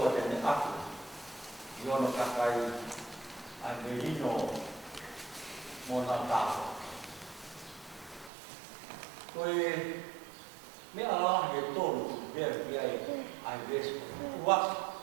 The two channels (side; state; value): left; drops out; at 8.3 s